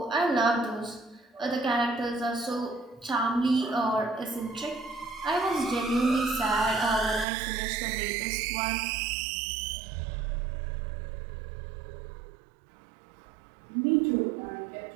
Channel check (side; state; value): left; drops out; at 7.2 s